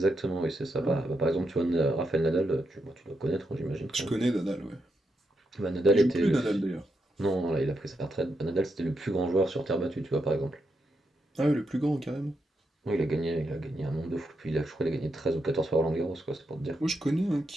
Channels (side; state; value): both; normal; correlation 0.83